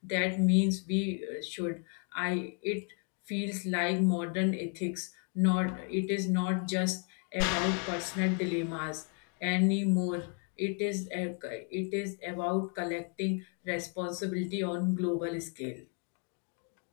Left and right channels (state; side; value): quieter; right; 39.0 dB